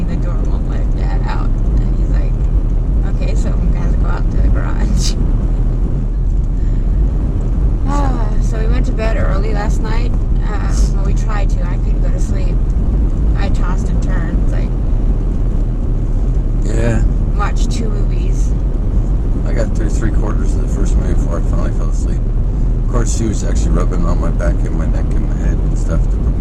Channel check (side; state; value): both; identical; correlation 1.00